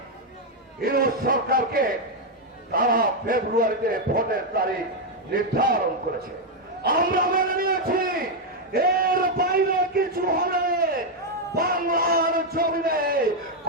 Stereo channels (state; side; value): normal; both; correlation 0.01